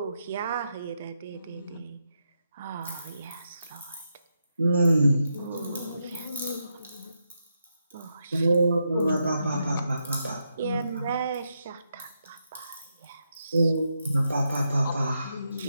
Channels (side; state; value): both; inverted; correlation -0.83